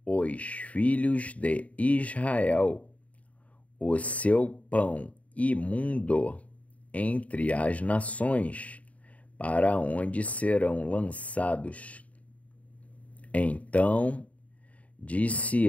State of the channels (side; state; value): right; late; 0.068 ms